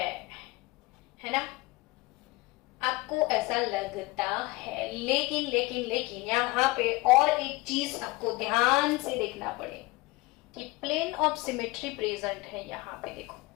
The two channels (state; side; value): quieter; right; 22.1 dB